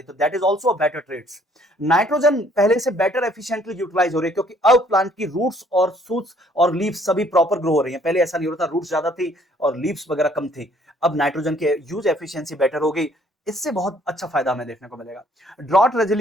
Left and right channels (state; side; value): normal; both; correlation 0.62